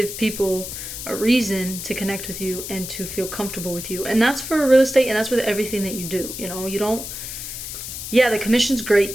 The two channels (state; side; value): noise; left; hiss, 8 dB below the sound